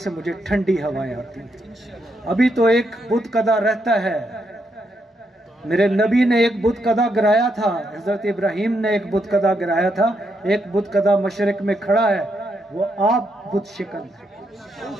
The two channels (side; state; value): both; normal; correlation 0.79